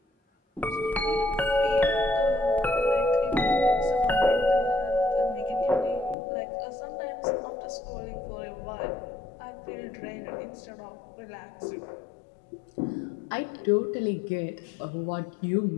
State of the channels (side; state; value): right; drops out; at 6.2 s